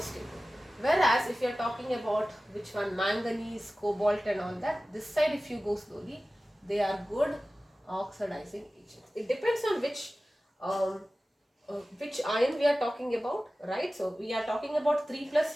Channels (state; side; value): normal; both; correlation 0.96